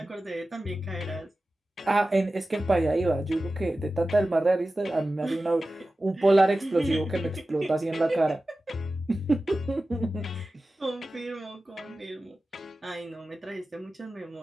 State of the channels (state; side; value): normal; both; correlation 0.95